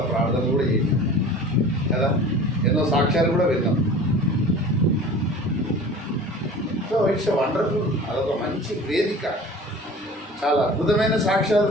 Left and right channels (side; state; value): both; normal; correlation 0.41